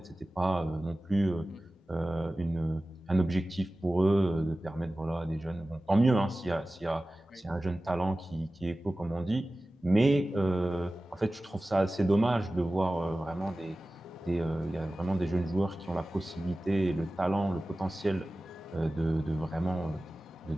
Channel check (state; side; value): normal; both; correlation 0.96